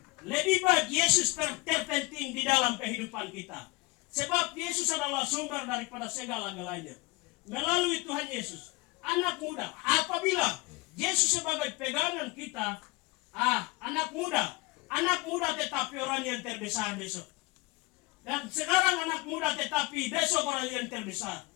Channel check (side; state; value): right; quieter; 23.8 dB